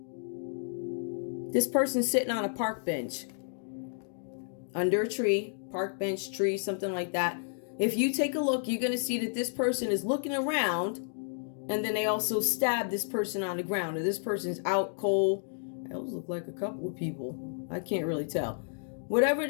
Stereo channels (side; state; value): right; silent; digital silence